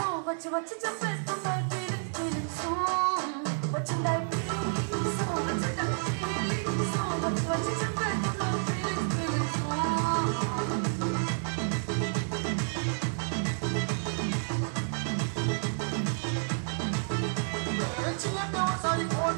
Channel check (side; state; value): left; silent; digital silence